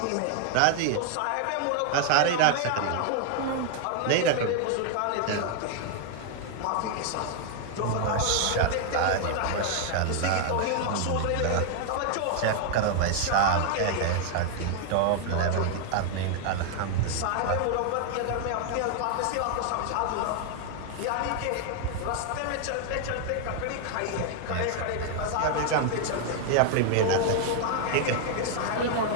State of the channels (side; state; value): both; different; correlation 0.00